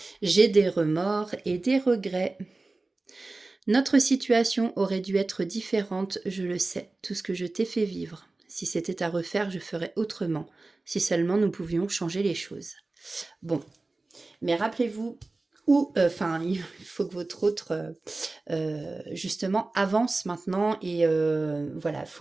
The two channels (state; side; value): quieter; left; 3.3 dB